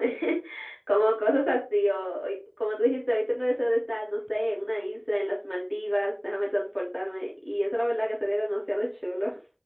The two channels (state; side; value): identical; both; correlation 1.00